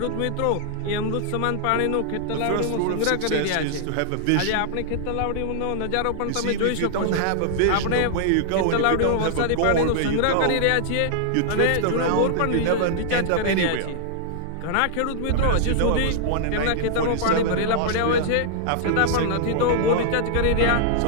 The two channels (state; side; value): different; both; correlation -0.01